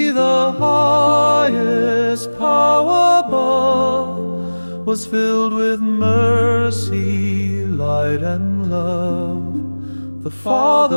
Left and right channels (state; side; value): inverted; both; correlation -1.00